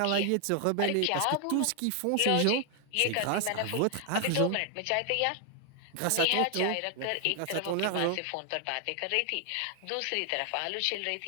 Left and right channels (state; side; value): different; both; correlation 0.00